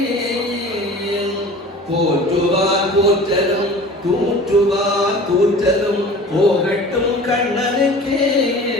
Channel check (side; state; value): both; normal; correlation 0.41